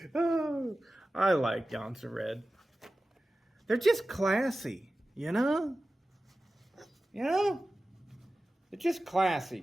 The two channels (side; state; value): both; normal; correlation 0.95